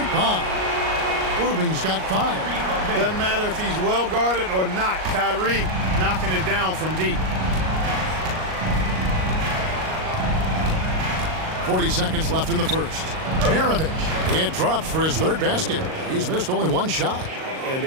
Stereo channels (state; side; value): late; left; 38 ms